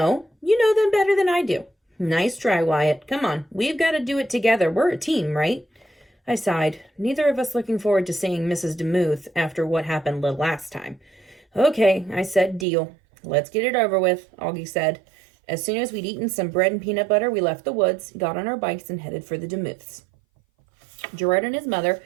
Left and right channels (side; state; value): left; drops out; at 12.7 s